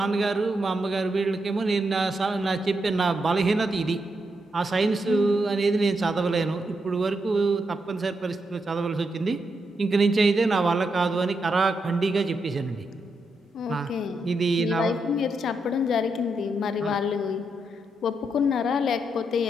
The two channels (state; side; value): normal; both; correlation 0.82